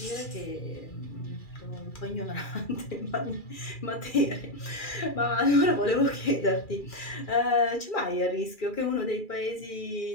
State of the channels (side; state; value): right; late; 2.4 ms